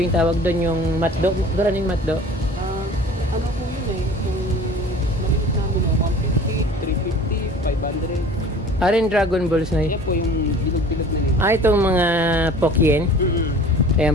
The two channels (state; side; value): normal; both; correlation 0.44